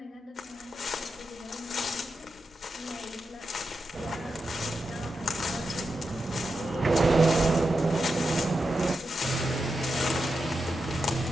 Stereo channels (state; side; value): normal; both; correlation 0.88